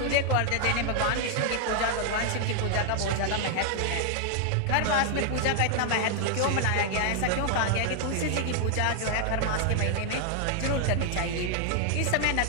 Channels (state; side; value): different; both; correlation 0.00